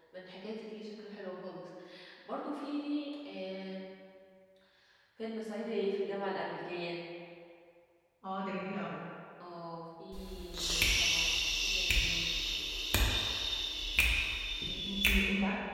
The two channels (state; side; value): identical; both; correlation 1.00